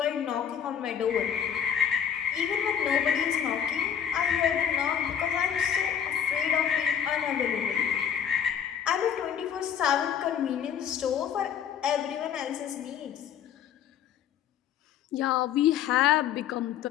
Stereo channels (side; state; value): right; quieter; 8.8 dB